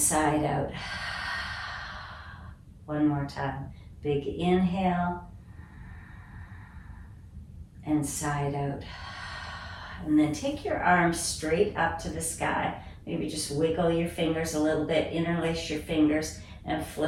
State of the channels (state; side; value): identical; both; correlation 1.00